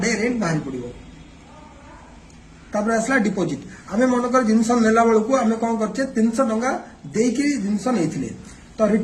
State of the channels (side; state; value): both; identical; correlation 1.00